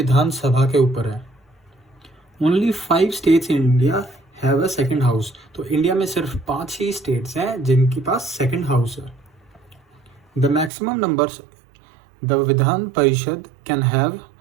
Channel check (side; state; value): left; drops out; at 10.7 s